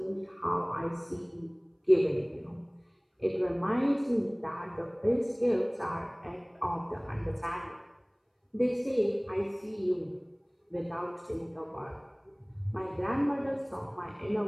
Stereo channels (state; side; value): identical; both; correlation 1.00